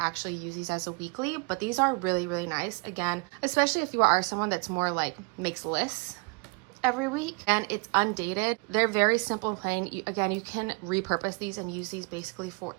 use these as a weekly, but these are really, really nice. Again, especially if you are someone that's more like makes lists every week, and it's undated. They're very simple and plain. Again, you can repurpose these and use these basically for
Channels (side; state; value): left; quieter; 32.2 dB